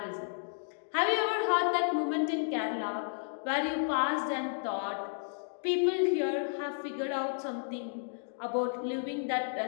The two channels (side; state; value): right; silent; digital silence